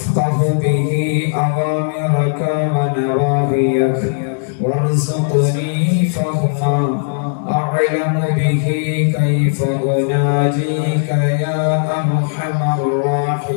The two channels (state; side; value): silent; right; digital silence